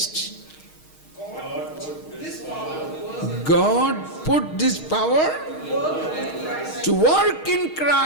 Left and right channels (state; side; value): late; right; 6.4 ms